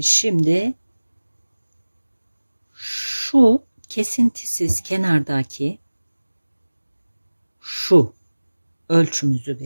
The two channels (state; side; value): inverted; both; correlation -1.00